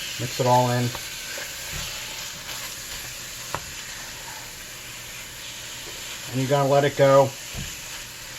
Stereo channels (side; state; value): both; identical; correlation 1.00